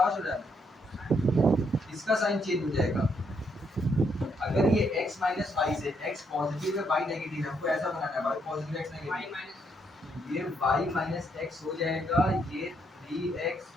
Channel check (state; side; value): normal; both; correlation 0.74